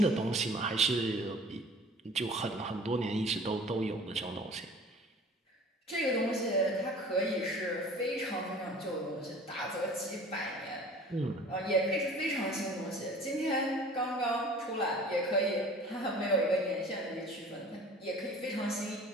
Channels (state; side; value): normal; both; correlation 0.46